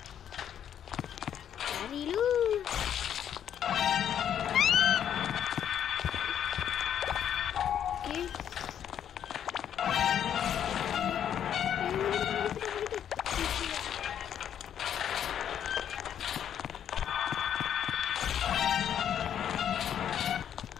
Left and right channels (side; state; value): right; quieter; 9.5 dB